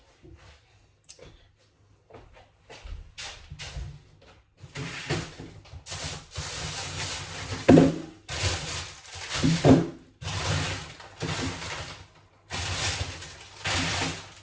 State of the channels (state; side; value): identical; both; correlation 1.00